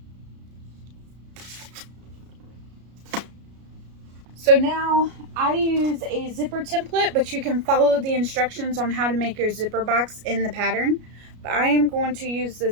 So now I use a zipper template, but you can follow the instructions on how to make your zipper box in the pattern. But I am going to use the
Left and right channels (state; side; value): late; left; 33 ms